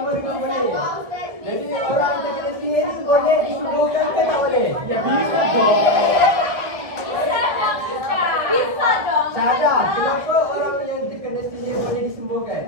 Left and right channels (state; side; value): late; left; 1.7 ms